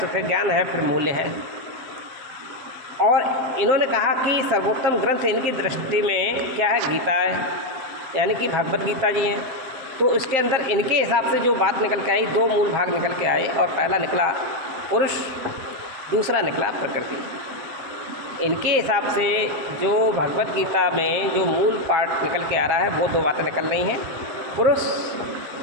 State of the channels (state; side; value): late; left; 7.6 ms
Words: फिर ज्ञान है, फिर मूल्य है। और इन्होंने कहा कि सर्वोत्तम ग्रंथ इनकी दृष्टि में क्या है? गीता है, यानी कि भगवत गीता जी हैं। तो इसके अंदर इनके हिसाब से जो बात निकल के आई, दो मूल भाग निकल के आए, और पहला निकला पुरुष, दूसरा निकला प्रकृति। इनके हिसाब से जो भगवत गीता में जो मूल पार्ट निकल के आ रहा है, वो दो बातें निकल रही हैं, पुरुष